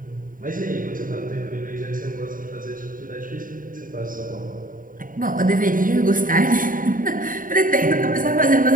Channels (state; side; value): late; left; 0.40 ms